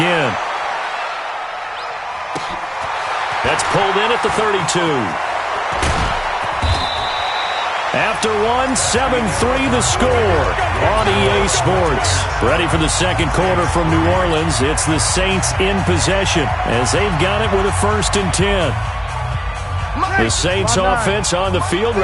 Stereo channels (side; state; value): both; identical; correlation 1.00